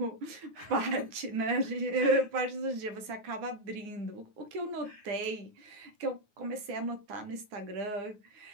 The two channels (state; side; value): late; left; 9.4 ms